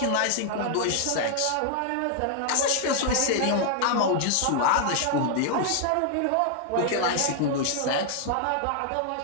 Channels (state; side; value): different; both; correlation 0.00